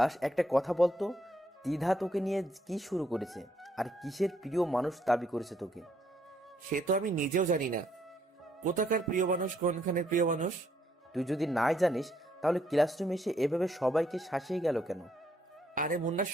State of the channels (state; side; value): normal; both; correlation 0.71